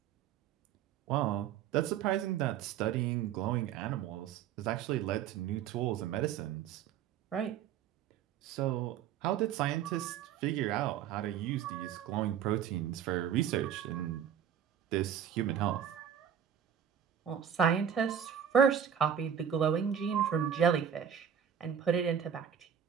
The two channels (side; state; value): left; quieter; 8.8 dB